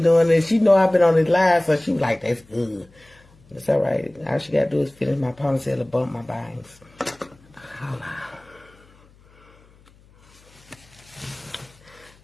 doing. And she know I've been on this live, so she was like, that's good. It's alright. All she gotta do is finish my ponytail and bump my bangs. Hold on.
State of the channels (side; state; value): left; noise; hum, 28 dB below the sound